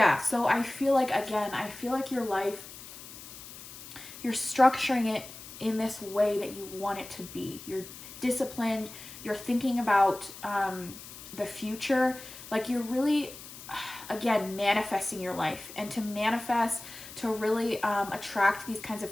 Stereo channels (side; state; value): left; noise; hiss, 14 dB below the sound